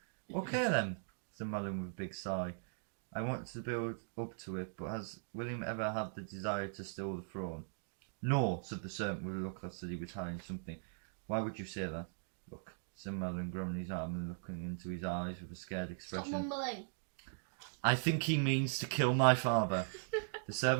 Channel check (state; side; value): silent; left; digital silence